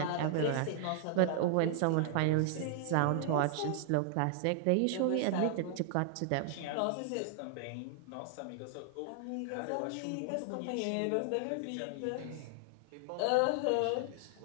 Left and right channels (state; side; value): different; both; correlation -0.01